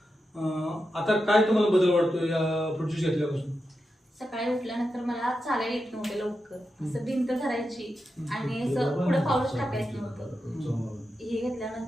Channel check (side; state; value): both; normal; correlation 0.89